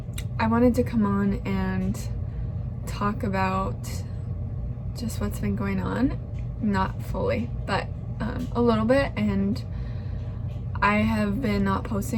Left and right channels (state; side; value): identical; both; correlation 1.00